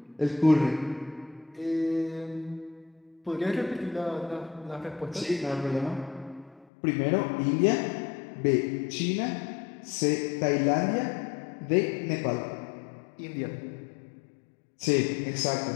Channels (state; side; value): drops out; right; at 6.7 s